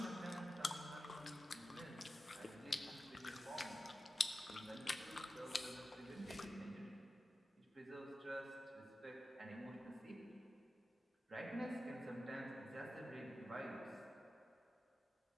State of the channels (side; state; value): both; normal; correlation 0.93